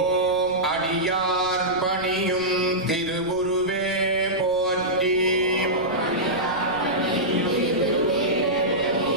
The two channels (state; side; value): noise; right; rumble, 20 dB below the sound